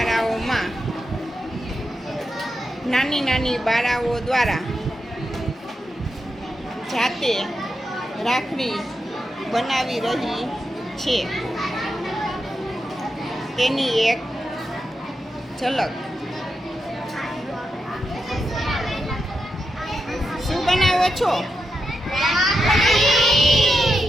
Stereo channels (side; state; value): both; normal; correlation 0.86